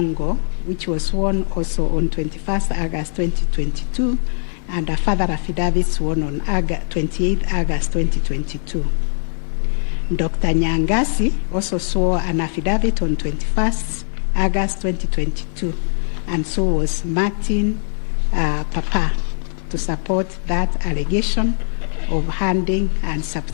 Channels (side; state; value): right; silent; 61 dB below the other